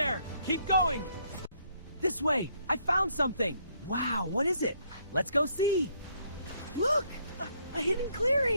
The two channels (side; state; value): both; inverted; correlation -0.70